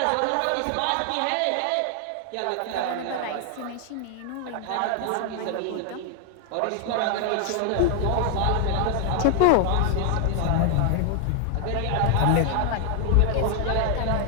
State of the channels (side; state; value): both; different; correlation 0.00